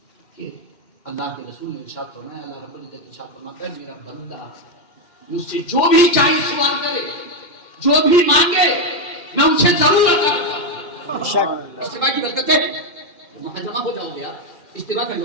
کہ اللہ کے رسول نے ارشاد فرمایا، اللہ رب العزت ارشاد فرماتا ہے، میرا بندہ مجھ سے جو بھی چاہے سوال کرے، جو بھی مانگے، میں ان سے ضرور عطا کروں۔ اجتماع کی برکتیں ہیں، وہاں جمع ہو جاؤ گے آپ، اجتماع کر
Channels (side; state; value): right; late; 2.8 ms